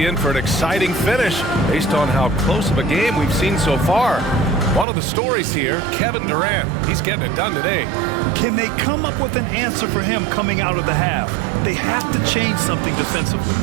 in for an exciting finish based on how close of a game we've seen so far. One of the stories here, Kevin Durant. He's getting it done today. Can they come up with an answer for him coming out of the half? They have to change something defensively.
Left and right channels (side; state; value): left; drops out; at 4.9 s